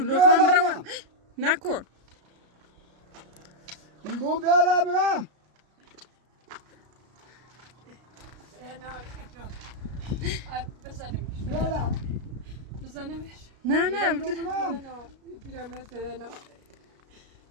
لطفا برم نکن میگم بیارم بزنیمش بیارم بزنیمش نه نه پیرمرد بدن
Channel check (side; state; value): left; late; 33 ms